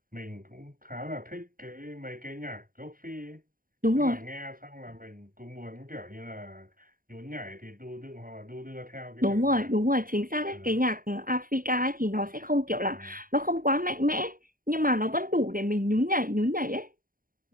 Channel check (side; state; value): left; late; 0.41 ms